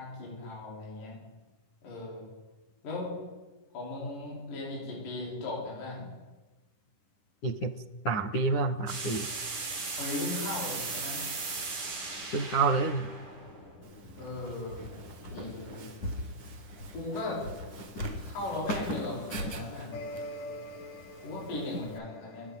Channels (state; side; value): late; right; 10 ms